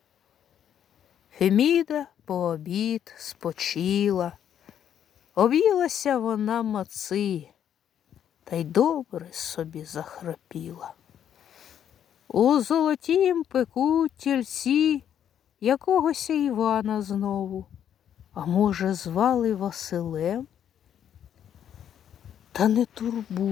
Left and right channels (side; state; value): right; quieter; 9.5 dB